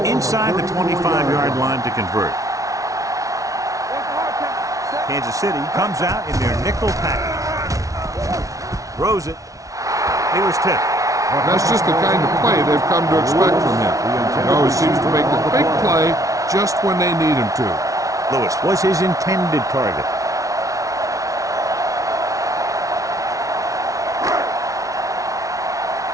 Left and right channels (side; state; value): left; late; 0.17 ms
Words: inside the 25-yard line to convert. Kansas City comes out in their nickel package. Throws it. He was tipped. That's just the kind of play they've come to expect from him. He always seems to make the big play just when they need him to. Lewis was his intended target.